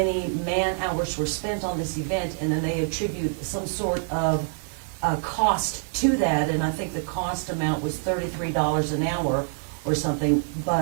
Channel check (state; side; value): silent; left; digital silence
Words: man-hours were spent on this event, and then they attribute some sort of cost to that, and I think the cost amount was $33 an hour or something,